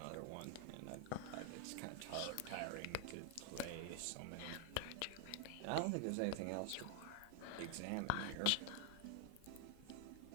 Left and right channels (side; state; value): both; different; correlation 0.00